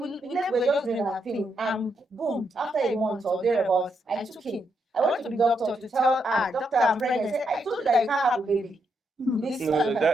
we're just doing our thing. And boom, after a month or thereabouts, I took him. I went to the doctor to tell doctor, I'm pregnant. I said, I told you that you can't have a baby. No,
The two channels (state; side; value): normal; both; correlation 0.80